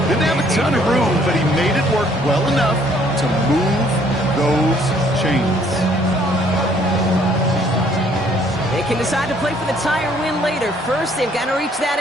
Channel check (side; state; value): both; normal; correlation 0.62